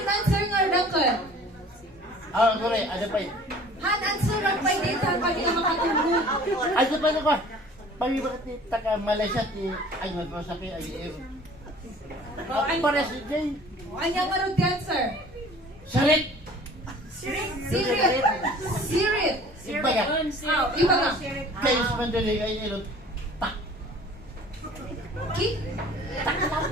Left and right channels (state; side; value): normal; both; correlation 0.48